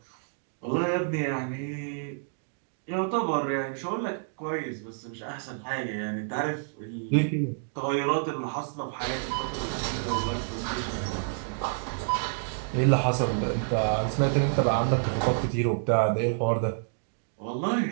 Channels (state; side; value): silent; left; digital silence